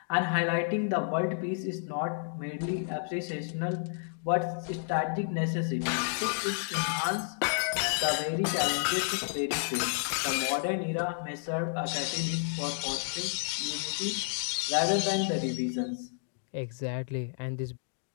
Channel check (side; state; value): right; silent; digital silence